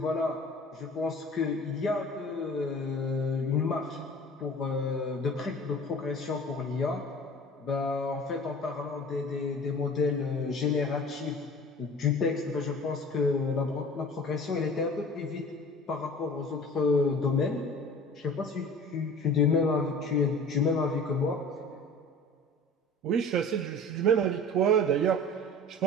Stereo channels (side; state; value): both; normal; correlation 0.42